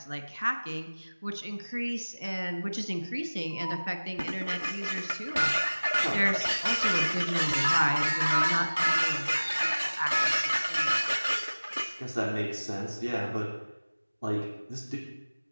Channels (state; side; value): inverted; both; correlation -1.00